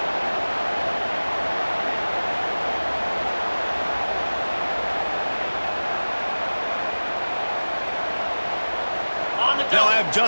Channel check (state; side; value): inverted; both; correlation -1.00